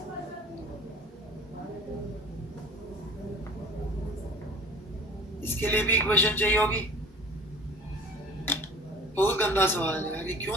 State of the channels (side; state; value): both; normal; correlation 0.44